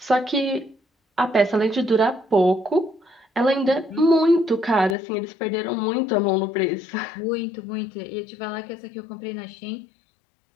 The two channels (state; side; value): drops out; right; at 5.0 s